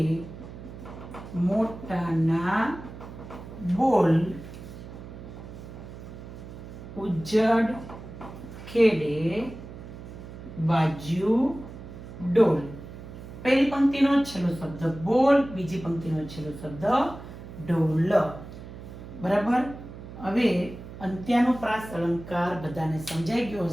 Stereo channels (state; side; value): noise; right; hum, 13 dB below the sound